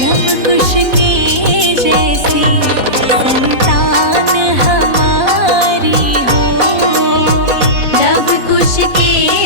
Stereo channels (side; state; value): left; late; 4.1 ms